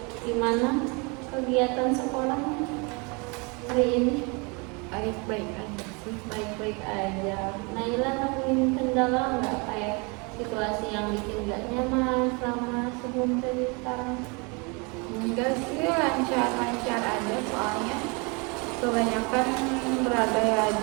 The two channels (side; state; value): left; quieter; 30.7 dB